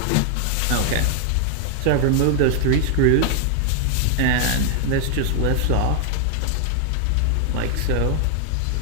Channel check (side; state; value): both; different; correlation 0.00